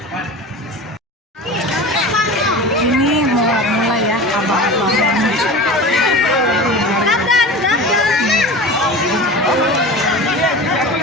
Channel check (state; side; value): normal; both; correlation 0.33